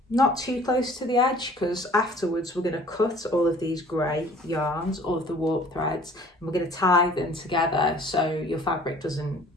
not too close to the edge, because afterwards we're going to cut all of these grey yarns, all of the warp threads, and we're going to tie them together so your fabric doesn't,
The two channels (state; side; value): normal; both; correlation 0.52